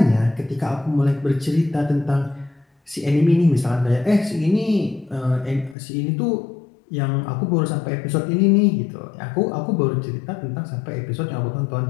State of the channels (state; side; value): drops out; right; at 5.8 s